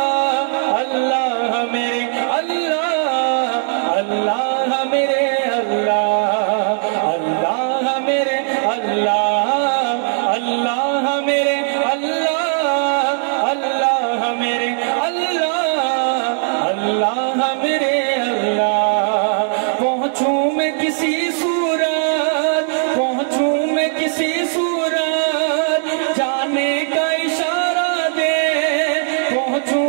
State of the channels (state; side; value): silent; left; 67 dB below the other